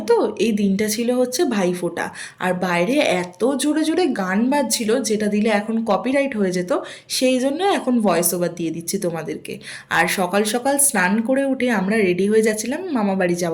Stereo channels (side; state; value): both; identical; correlation 1.00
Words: তো, এই দিনটা ছিল হচ্ছে ভাইফোঁটা। আর বাইরে এত জোরে জোরে গান বাজছিল, যেটা দিলে এখন কপিরাইট হয়ে যেত। সেই জন্য এখন ভয়েস ওভার দিয়ে দিচ্ছি তোমাদেরকে। আর সকাল সকাল স্নান করে উঠে আমরা রেডি হয়ে যাচ্ছিলাম মামা বাড়ি